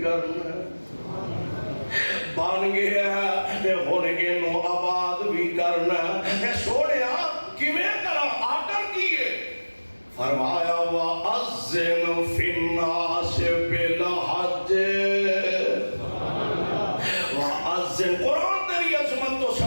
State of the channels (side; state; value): both; inverted; correlation -1.00